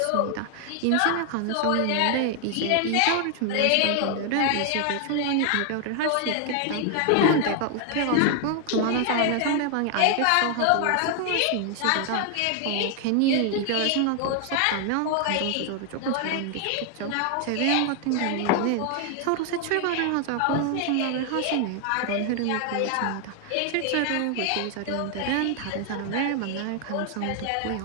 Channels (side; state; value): both; different; correlation 0.00